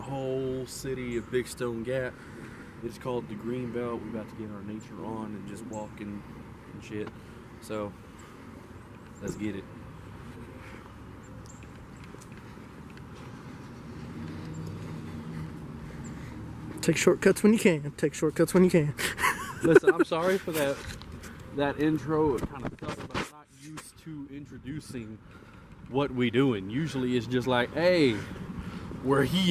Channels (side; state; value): both; identical; correlation 1.00